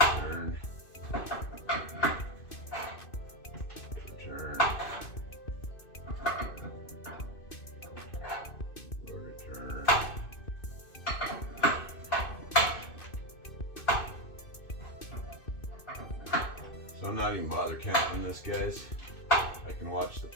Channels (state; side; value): late; right; 2.6 ms